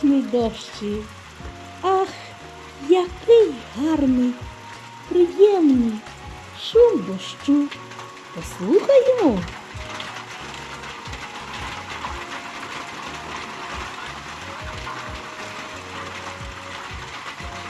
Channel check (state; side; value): identical; both; correlation 1.00